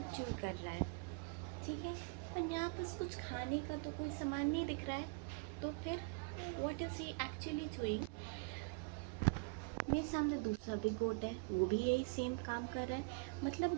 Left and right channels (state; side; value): quieter; left; 31.2 dB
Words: च्यू कर रहा है। ठीक है, पर यहाँ पर कुछ खाने का तो कोई सामान नहीं दिख रहा है। तो फिर what is he actually doing? मेरे सामने दूसरा भी गोट है, वो भी यही सेम काम कर रहा है। मतलब